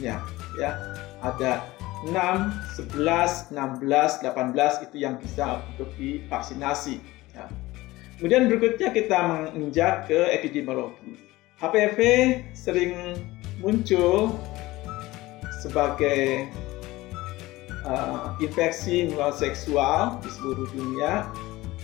ya. Ada 6, 11, 16, 18 itu yang bisa untuk divaksinasi, ya. Kemudian berikutnya kita menginjak ke epidemiologi. HPV sering muncul sebagai infeksi menular seksual di seluruh dunia.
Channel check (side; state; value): right; quieter; 18.9 dB